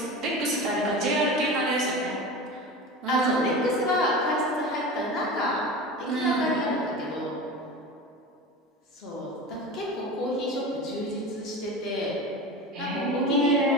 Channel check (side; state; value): both; normal; correlation 0.30